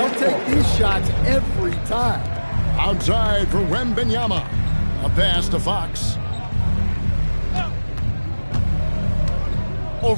take these shots every time. Outside for Wembanyama. A pass to Fox.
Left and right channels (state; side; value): inverted; both; correlation -1.00